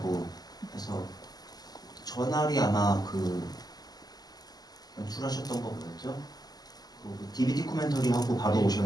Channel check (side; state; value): right; late; 0.19 ms